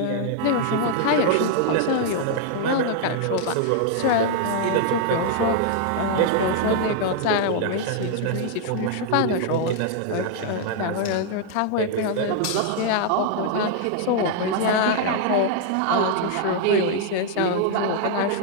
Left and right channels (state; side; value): different; both; correlation 0.00